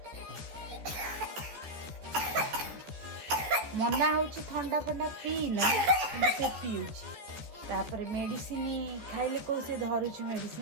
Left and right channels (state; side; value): late; left; 14 ms